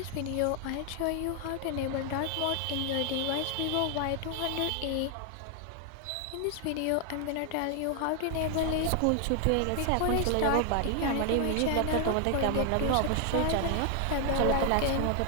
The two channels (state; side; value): different; both; correlation 0.00